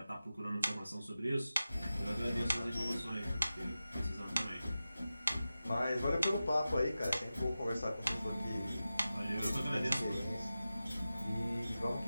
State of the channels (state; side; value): inverted; both; correlation -0.94